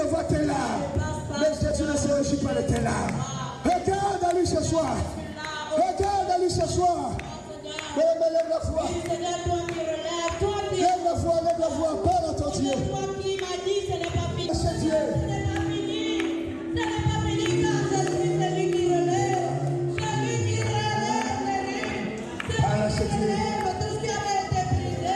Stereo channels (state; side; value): identical; both; correlation 1.00